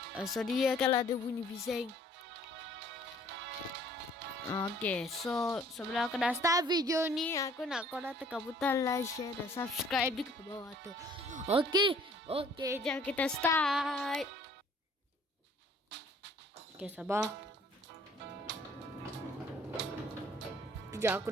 sorry ya kalau ada bunyi bising. Okay, so sebelum aku dah start video ni, aku nak korang tekan butang like, share dan subscribe di bawah tu. Okay, jom kita start. Okay, sabar. Sekejap aku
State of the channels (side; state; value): both; normal; correlation 0.57